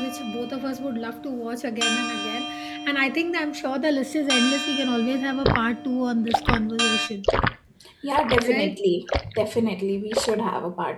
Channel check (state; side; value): identical; both; correlation 1.00